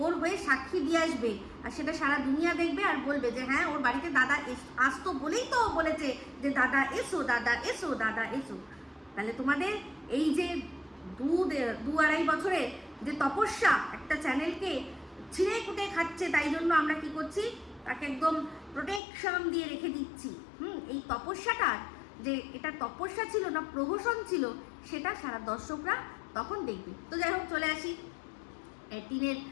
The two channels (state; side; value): drops out; right; at 19.0 s